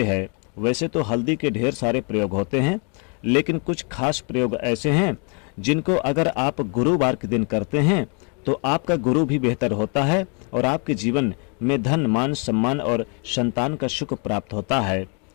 है। वैसे तो हल्दी के ढेर सारे प्रयोग होते हैं, लेकिन कुछ खास प्रयोग ऐसे हैं जिनको अगर आप गुरुवार के दिन करते हैं तो आपका गुरु भी बेहतर होता है और आपके जीवन में धन, मान, सम्मान और संतान का सुख प्राप्त होता है।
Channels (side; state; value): right; quieter; 36.9 dB